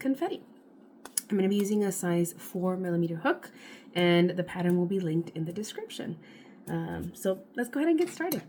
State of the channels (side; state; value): both; identical; correlation 1.00